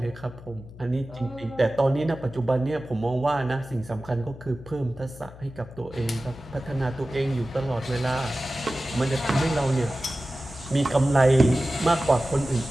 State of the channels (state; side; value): noise; left; hum, 18 dB below the sound